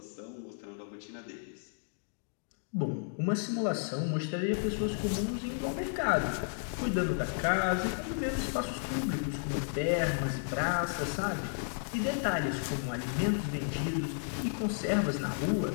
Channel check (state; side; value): silent; right; digital silence